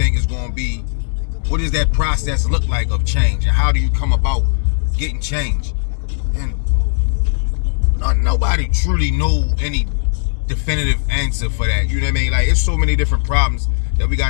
is going to be? What does that process look like of change? And how do you come about getting change? And nobody truly know any definitive answer for that. You know what I mean? Like, it's so many different problems that we got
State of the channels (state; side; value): silent; right; digital silence